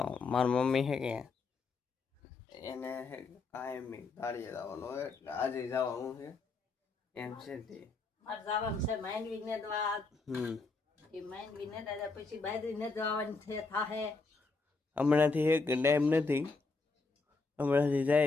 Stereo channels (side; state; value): right; quieter; 4.0 dB